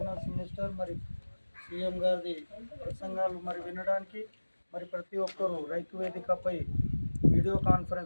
మినిస్టర్, మరి సీఎం గారిది ప్రసంగాలు మరి వినడానికి మరి ప్రతి ఒక్కరూ రైతు వేదికపై వీడియో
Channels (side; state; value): both; inverted; correlation -1.00